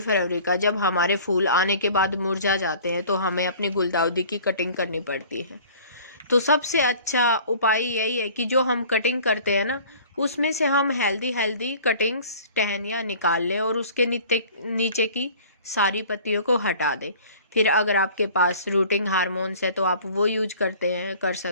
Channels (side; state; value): both; inverted; correlation -0.47